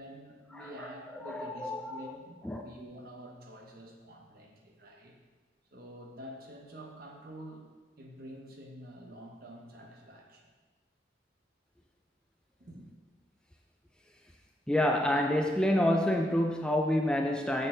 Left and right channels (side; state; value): both; normal; correlation 0.79